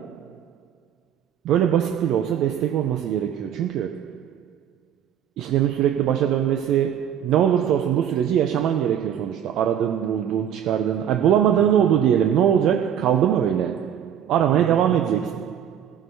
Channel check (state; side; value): quieter; left; 9.3 dB